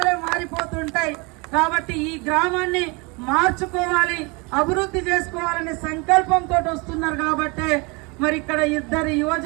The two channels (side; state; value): left; quieter; 28.6 dB